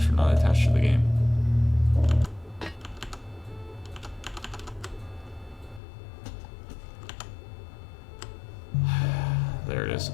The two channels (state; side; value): drops out; right; at 5.8 s